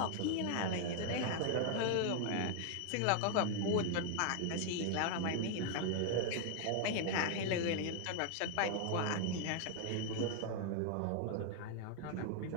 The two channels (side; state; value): both; different; correlation 0.00